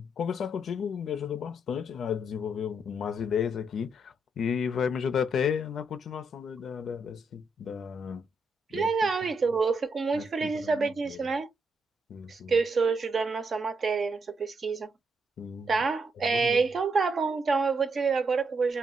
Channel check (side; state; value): both; normal; correlation 0.78